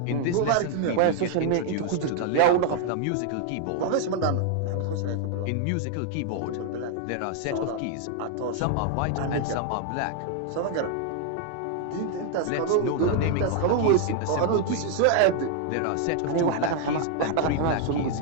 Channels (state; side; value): different; both; correlation 0.00